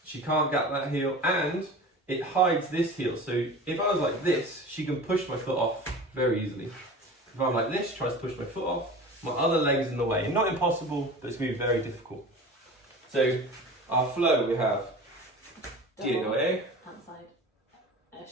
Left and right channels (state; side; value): normal; both; correlation 0.36